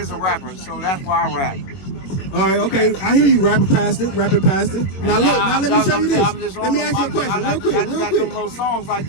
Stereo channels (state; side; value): late; right; 21 ms